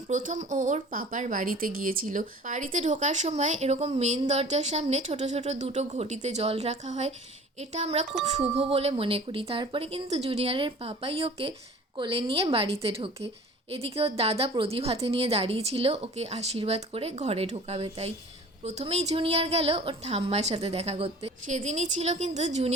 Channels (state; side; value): normal; both; correlation 0.44